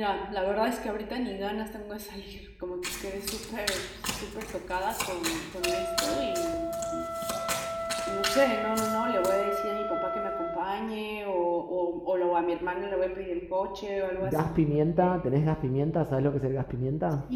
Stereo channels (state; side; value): identical; both; correlation 1.00